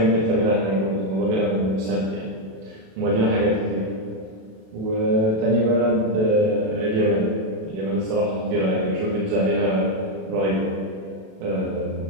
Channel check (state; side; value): late; left; 37 ms